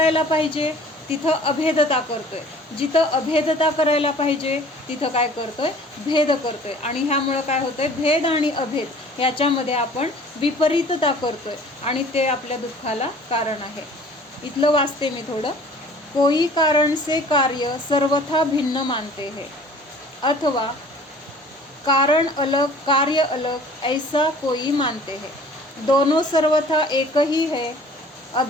पाहिजे तिथं अभेदता करतोय, जिथं अभेदता करायला पाहिजे तिथं काय करतोय, भेद करतोय. आणि ह्यामुळं काय होतंय, भेद आणि अभेद ह्याच्यामध्ये आपण विपरीतता करतोय आणि ते आपल्या दुःखाला कारण आहे. इथलं वाचते मी थोडं. कोई कारण से कार्य सर्वथा भिन्न मानते हैं, अथवा कारण अलग कार्य अलग ऐसा कोई मानते हैं. दोनों सर्वथा एक ही है,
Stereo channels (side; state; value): both; normal; correlation 0.49